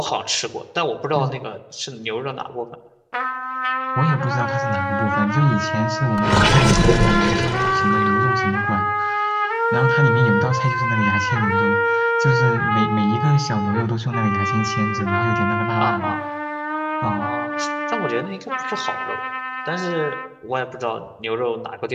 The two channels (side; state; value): both; identical; correlation 1.00